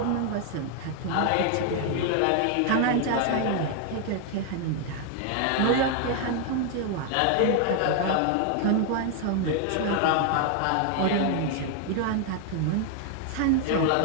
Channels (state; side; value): different; both; correlation 0.00